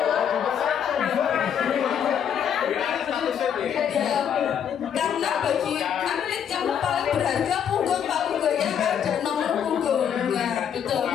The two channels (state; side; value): quieter; right; 8.5 dB